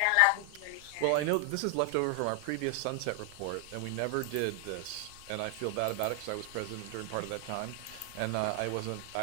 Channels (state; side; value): different; both; correlation 0.00